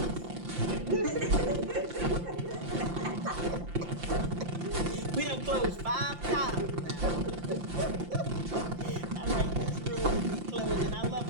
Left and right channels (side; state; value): left; late; 5.8 ms